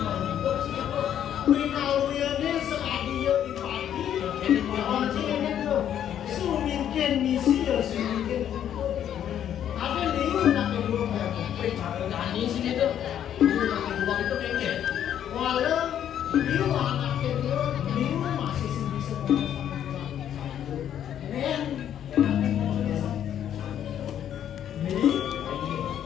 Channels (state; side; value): quieter; right; 10.1 dB